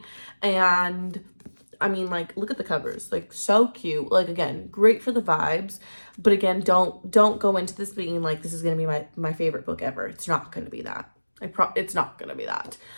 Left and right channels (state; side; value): inverted; both; correlation -1.00